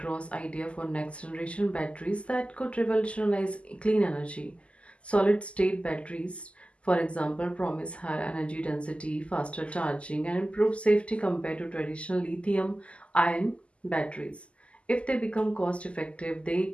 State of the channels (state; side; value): late; right; 0.057 ms